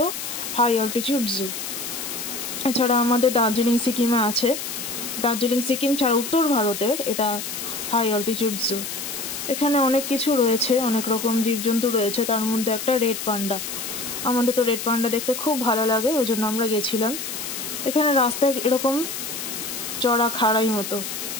হাই অল্টিটিউড জু। এছাড়া আমাদের দার্জিলিং সিকিমে আছে। দার্জিলিং সিকিম ছাড়া উত্তর ভারতের এটা হাই অল্টিটিউড জু। এখানে অনেক কিছু রয়েছে, অনেক রকম জীবজন্তু রয়েছে, তার মধ্যে একটা রেড পান্ডা। আমাদের তো রেড পান্ডা দেখতে খুব ভালো লাগে, ওই জন্য আমরা গেছিলাম। এখানে রাস্তায় এরকম চড়া খাড়াই মতো,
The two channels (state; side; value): noise; left; hiss, 6 dB below the sound